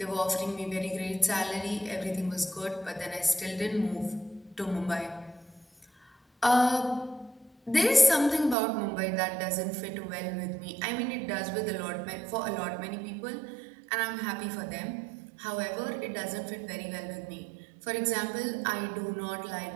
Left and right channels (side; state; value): left; drops out; at 8.6 s